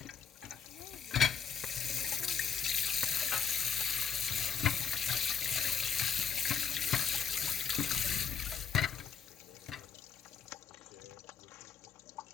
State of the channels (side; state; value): right; quieter; 7.0 dB